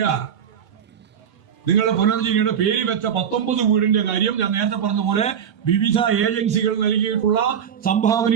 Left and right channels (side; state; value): left; quieter; 8.3 dB